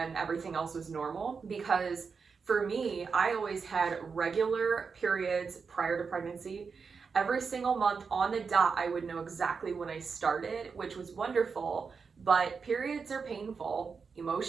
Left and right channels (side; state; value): left; quieter; 5.4 dB